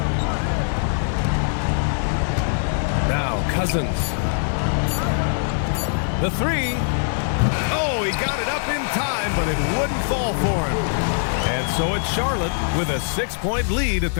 Now Cousins. The 3. Oh, he got it up in time, but it wouldn't fall for him. And so it's Charlotte with a 6-point lead at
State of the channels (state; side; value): silent; right; 58 dB below the other